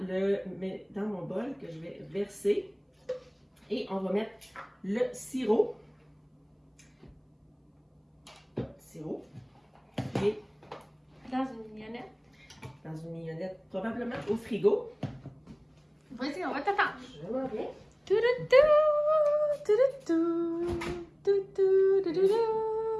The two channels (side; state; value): both; identical; correlation 1.00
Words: dans mon bol que je vais verser. Et on va mettre le sirop. Et dans une mignonnette. Dans une mignonnette, probablement au frigo. Vas-y, on va t'attendre. Je m'en viens.